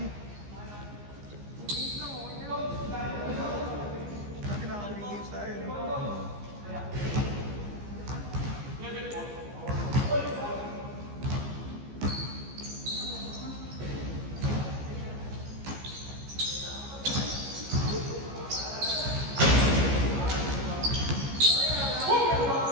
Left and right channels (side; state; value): left; late; 15 ms